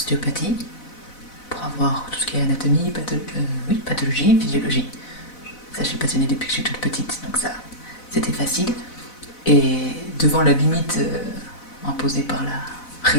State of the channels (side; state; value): right; late; 4.0 ms